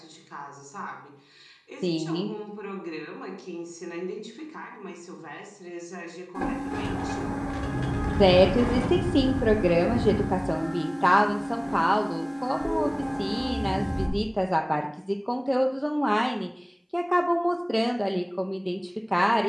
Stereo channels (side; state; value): both; identical; correlation 1.00